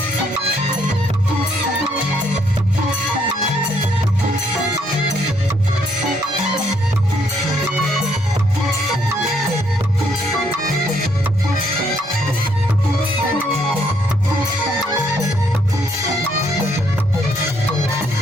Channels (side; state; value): both; normal; correlation 0.70